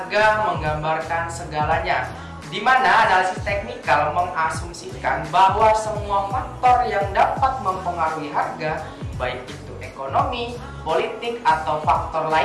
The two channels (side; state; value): both; identical; correlation 1.00